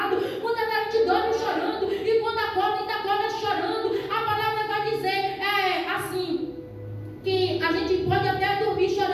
Muitas da gente dorme chorando e quando acorda ainda acorda chorando. A palavra vai dizer assim, que a gente pode até dormir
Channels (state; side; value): identical; both; correlation 1.00